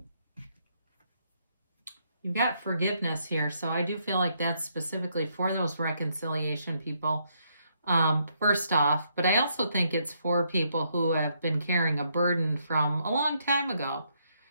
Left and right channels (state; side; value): inverted; both; correlation -0.74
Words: You've got forgiveness here, so I do feel like that's specifically for those reconciliation people, first off. But I also think it's for people who have been carrying a burden from a long time ago.